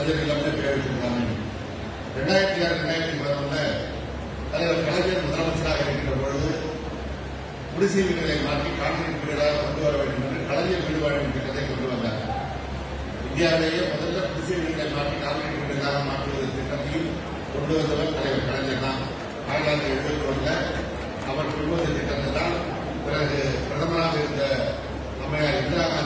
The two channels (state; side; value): identical; both; correlation 1.00